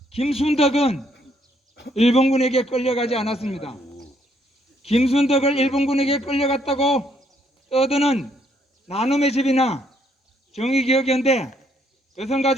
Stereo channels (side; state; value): both; normal; correlation 0.70